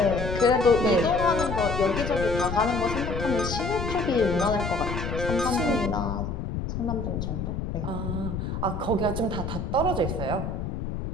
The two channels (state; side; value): noise; left; rumble, 4 dB below the sound